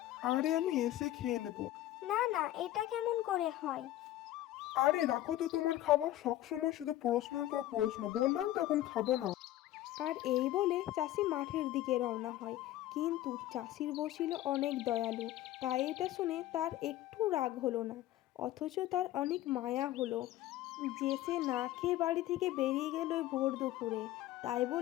আরে আমি এসে খেয়ে নেবো। না না, এটা কেমন করে হয়? আরে রাখো তো তোমার খাবার, সবসময় শুধু প্রশ্নের পর প্রশ্ন। বললাম তো এখন খাবো না। আর এই বলে চাষি মাঠের দিকে রওনা হয়। কিন্তু চাষির বউ ছিল অনেক দয়ালু, তাই এটা শুনে তার একটু রাগ হলো না। অথচ তার অনেক মায়া হলো যে সে না খেয়ে বাড়ি থেকে বেরিয়ে গেল ওই ভোর দুপুরে। তাই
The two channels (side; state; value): right; quieter; 14.5 dB